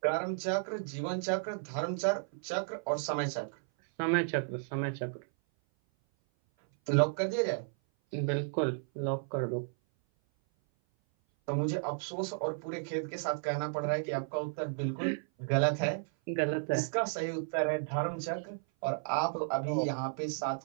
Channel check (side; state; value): left; silent; 56 dB below the other